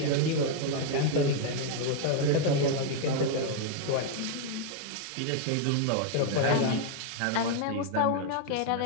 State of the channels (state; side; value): different; both; correlation 0.00